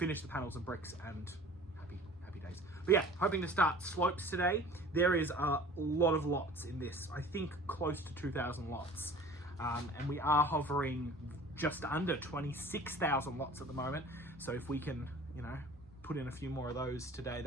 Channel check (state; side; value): normal; both; correlation 0.45